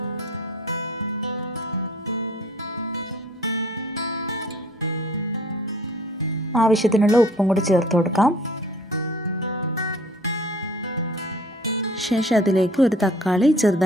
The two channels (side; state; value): both; normal; correlation 0.51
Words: ആവശ്യത്തിനുള്ള ഉപ്പും കൂടി ചേർത്ത് കൊടുക്കാം. ശേഷം അതിലേക്ക് ഒരു തക്കാളി